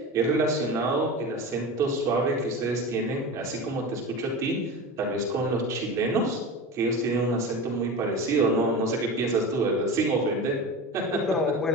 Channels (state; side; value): normal; both; correlation 0.29